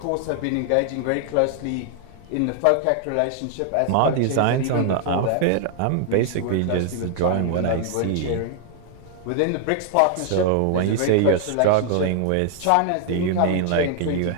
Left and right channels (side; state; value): both; different; correlation 0.00